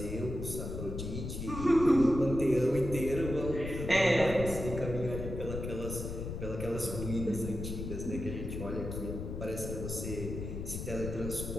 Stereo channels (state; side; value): noise; left; rumble, 6 dB below the sound